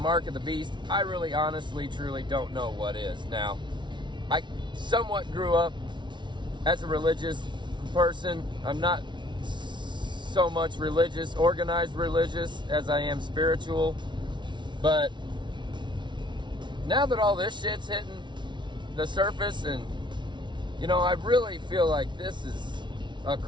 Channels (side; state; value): left; late; 0.23 ms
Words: of the beast, I really honestly truly don't know what is. Now, I somewhat grew up as a religious person. I'm not so much religious, organized religious, as I am spiritual. But now that all this shit's hitting the surface, and I really feel like this is a